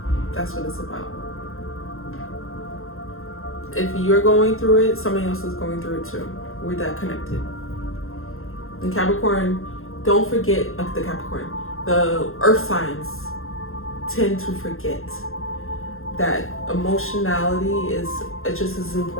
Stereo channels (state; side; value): late; right; 0.61 ms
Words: That's what it's about. If you're going through it, somebody else is going through it too. We're that connected. And Capricorn, don't forget, the Capricorn, the earth signs tend to forget that emotionality is just as